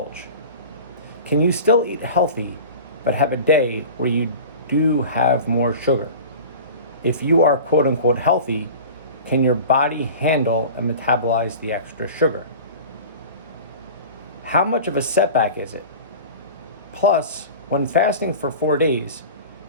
Can you still eat healthy but have a day where you do have more sugar? If you are quote unquote healthy, can your body handle and metabolize the extra sugar? How much of a setback is it? Plus, when fasting for 4 days,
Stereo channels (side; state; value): both; inverted; correlation -0.36